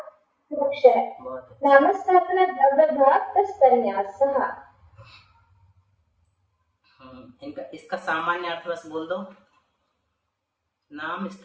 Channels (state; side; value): identical; both; correlation 1.00